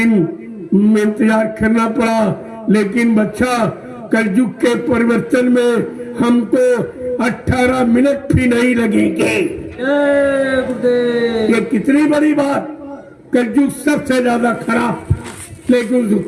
इंतजार करना पड़ा। लेकिन बच्चा, कलयुग के परिवर्तन में हमको 18 मिनट भी नहीं लगेंगे। ये कितनी बड़ी बात। कलयुग सबसे ज्यादा खराब, लेकिन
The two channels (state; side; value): identical; both; correlation 1.00